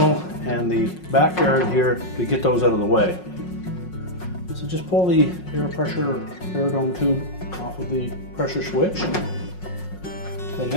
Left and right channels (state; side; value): late; right; 5.5 ms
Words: and the backyard here to get those out of the way. So just pull the air dome tube off of the pressure switch. Then